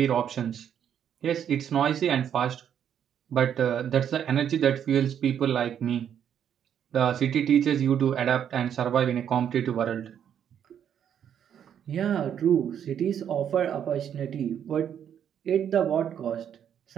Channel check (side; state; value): left; quieter; 9.0 dB